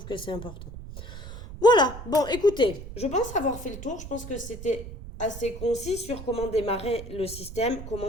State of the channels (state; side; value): noise; right; rumble, 11 dB below the sound